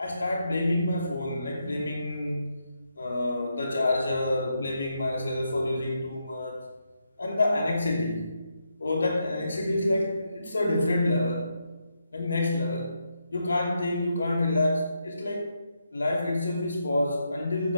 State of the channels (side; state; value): both; inverted; correlation -0.82